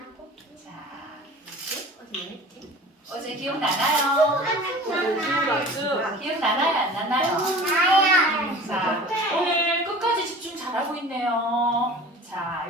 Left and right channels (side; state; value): both; normal; correlation 0.41